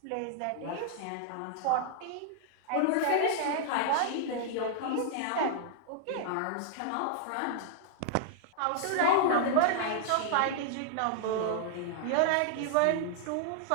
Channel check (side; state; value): both; different; correlation -0.01